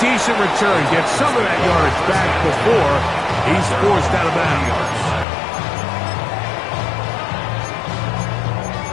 return, gets some of that yardage back before he's forced out of bounds.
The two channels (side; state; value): right; drops out; at 5.2 s